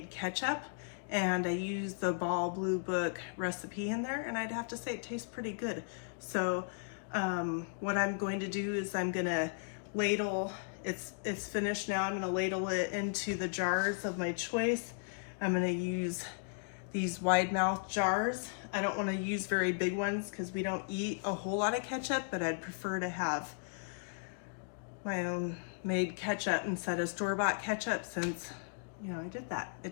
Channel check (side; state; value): right; silent; digital silence